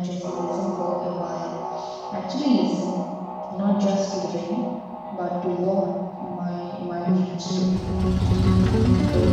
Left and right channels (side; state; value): both; identical; correlation 1.00